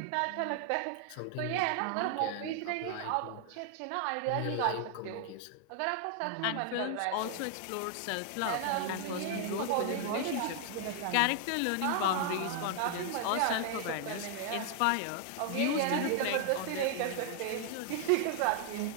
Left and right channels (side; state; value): both; different; correlation 0.00